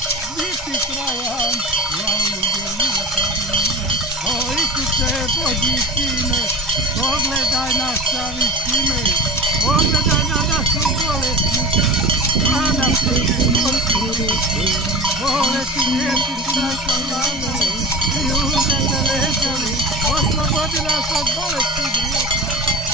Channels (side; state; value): both; normal; correlation 0.32